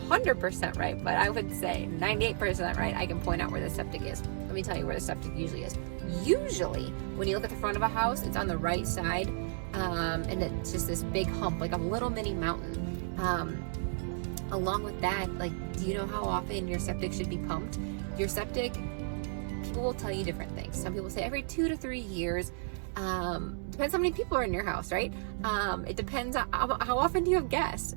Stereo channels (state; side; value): silent; left; digital silence